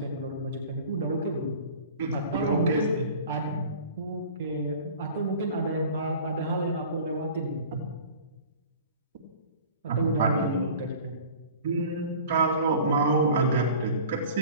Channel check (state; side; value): inverted; both; correlation -0.43